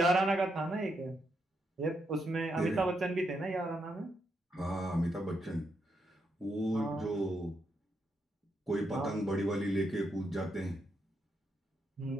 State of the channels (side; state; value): both; normal; correlation 0.80